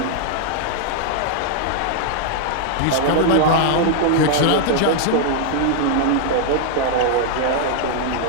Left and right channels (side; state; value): both; different; correlation 0.00